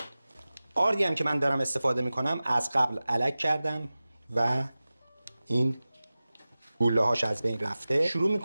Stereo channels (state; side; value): inverted; both; correlation -0.97